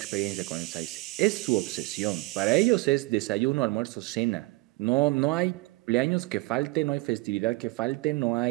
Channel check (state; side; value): quieter; left; 22.4 dB